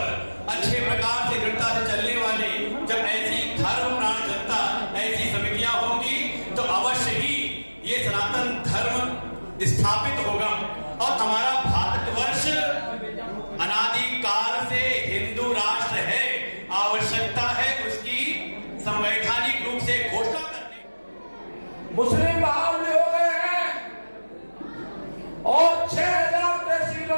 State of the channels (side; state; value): both; inverted; correlation -1.00